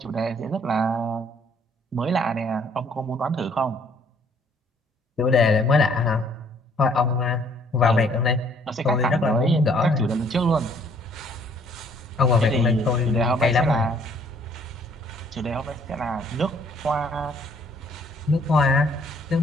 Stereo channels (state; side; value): normal; both; correlation 0.62